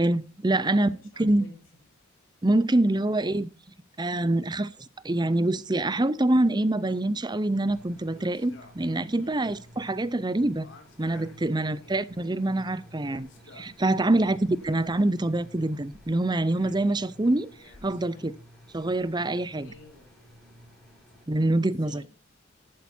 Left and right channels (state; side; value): normal; both; correlation 0.81